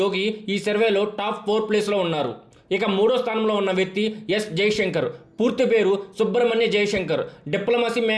యోగి ఈ సర్వేలో టాప్ 4 ప్లేస్లో ఉన్నారు. ఇక 3వ స్థానంలో ఉన్న వ్యక్తి ఎస్ జైశంకర్. పూర్తి పేరు Subrahmanya Jaishankar. Diplomacy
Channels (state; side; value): identical; both; correlation 1.00